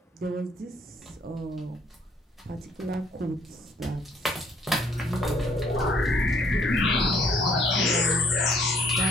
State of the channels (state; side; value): normal; both; correlation 0.62